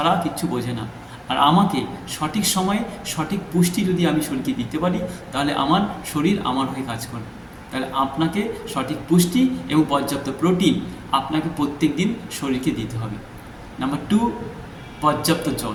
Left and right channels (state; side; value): identical; both; correlation 1.00